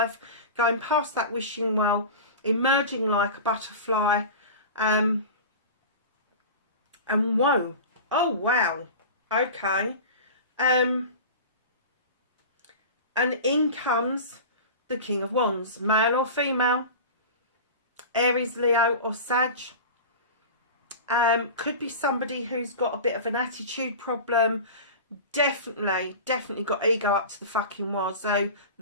going past that wishing well, emerging like a butterfly. And whoa. Oh, wow. Okay. And in comes the King of Wands, male or female, Aries, Leo or Sag. Could be somebody who's got a bit of an attitude problem. Definitely got ego up to the fucking wall. So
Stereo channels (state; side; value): inverted; both; correlation -0.32